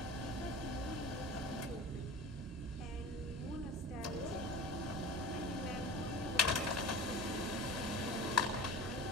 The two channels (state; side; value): normal; both; correlation 0.35